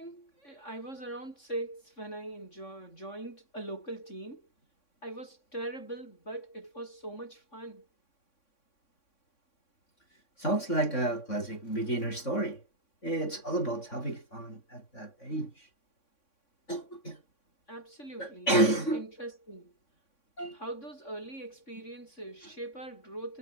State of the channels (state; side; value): late; right; 3.6 ms